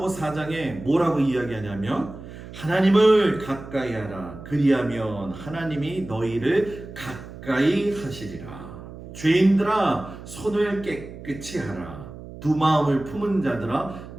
4장에 뭐라고 이야기하냐면 하나님을 가까이 하라. 그리하면 하나님이 너희를 가까이 하시리라. 죄인들아 손을 깨끗이 하라. 두 마음을 품은 자들아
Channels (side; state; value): right; noise; hum, 14 dB below the sound